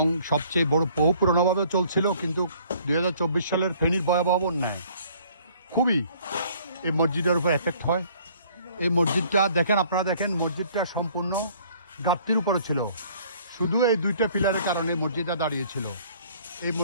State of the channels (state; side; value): inverted; both; correlation -0.57